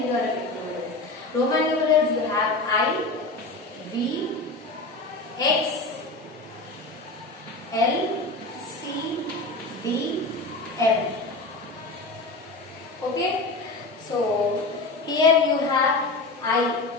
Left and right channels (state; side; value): quieter; right; 3.1 dB